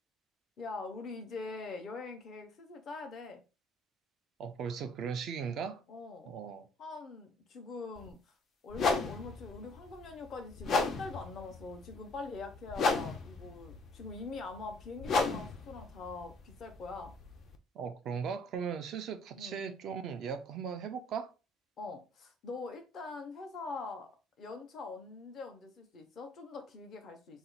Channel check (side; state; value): both; normal; correlation 0.59